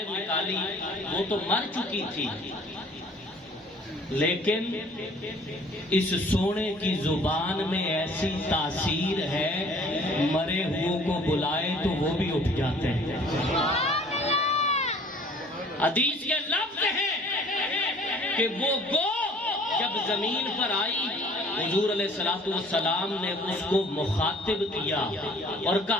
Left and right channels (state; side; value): normal; both; correlation 0.53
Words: نکالی، وہ تو مر چکی تھی، لیکن اس سونے کی زبان میں ایسی تاثیر ہے، مرے ہوئے کو بلائے تو وہ بھی اٹھ جاتے ہیں۔ حدیث کے لفظ ہیں کہ وہ گو جب زمین پر آئی، حضور علیہ الصلوۃ والسلام نے اس کو مخاطب کیا اور